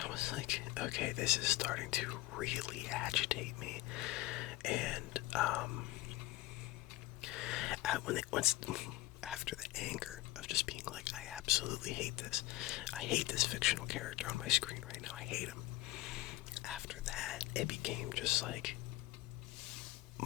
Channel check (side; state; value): right; quieter; 17.8 dB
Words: I was like, okay, this is starting to really agitate me. And, after the anger of just being like, I absolutely hate this. I hate this fictional character on my screen right now. I hate him. After that, it became just like,